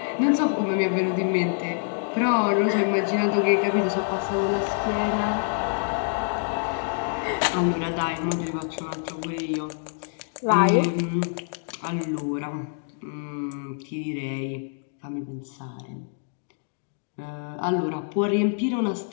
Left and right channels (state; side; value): silent; right; 61 dB below the other